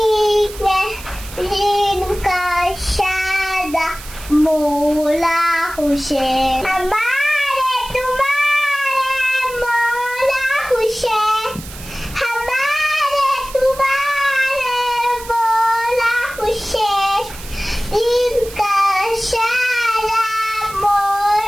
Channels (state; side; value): noise; right; hiss, 15 dB below the sound